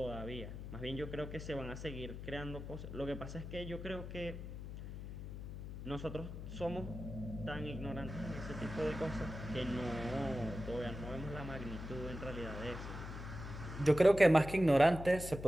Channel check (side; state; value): left; noise; hum, 8 dB below the sound